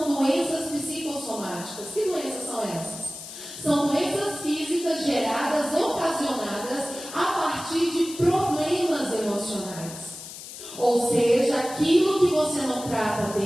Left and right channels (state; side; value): noise; left; hiss, 12 dB below the sound